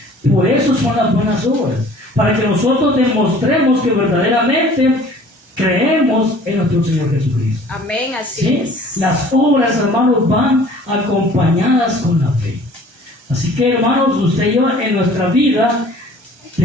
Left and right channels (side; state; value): left; late; 1.3 ms